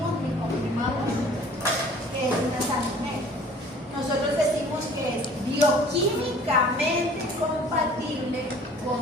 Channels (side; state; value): both; normal; correlation 0.50